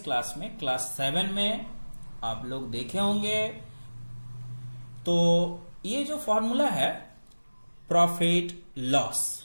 क्लास में क्लास 7 में आप लोग देखे होंगे। तो ये जो फॉर्मूला है प्रॉफिट लॉस,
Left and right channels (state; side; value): inverted; both; correlation -1.00